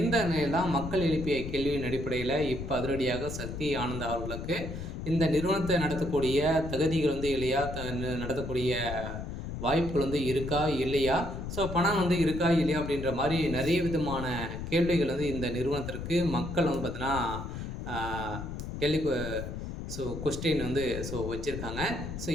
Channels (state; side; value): noise; left; rumble, 7 dB below the sound